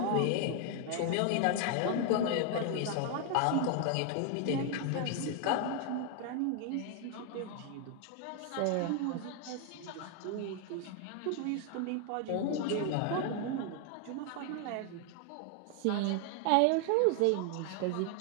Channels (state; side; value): different; both; correlation 0.00